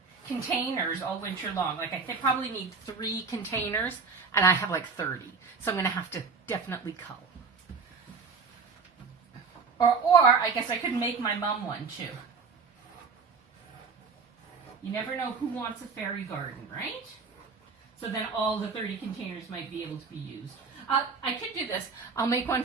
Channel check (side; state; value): left; quieter; 5.0 dB